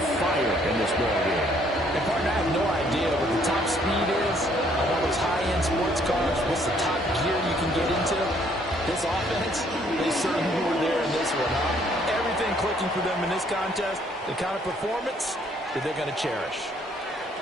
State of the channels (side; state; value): both; normal; correlation 0.65